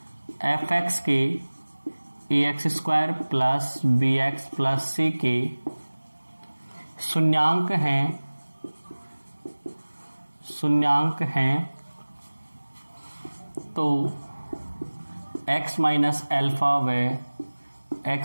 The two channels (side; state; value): both; inverted; correlation -1.00